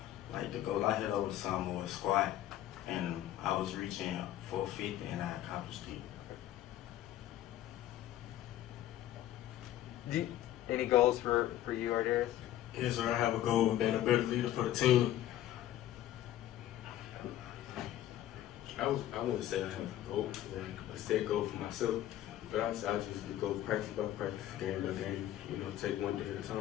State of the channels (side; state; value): right; quieter; 13.0 dB